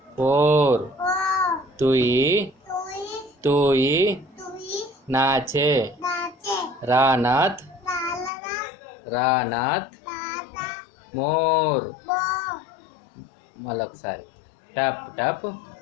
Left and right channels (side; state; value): right; drops out; at 8.3 s